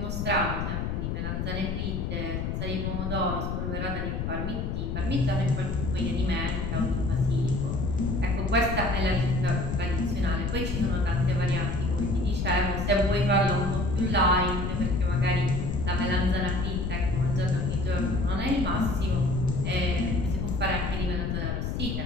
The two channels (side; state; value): left; noise; rumble, 2 dB below the sound